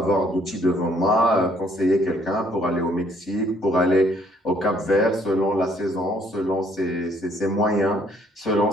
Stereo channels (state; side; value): normal; both; correlation 0.65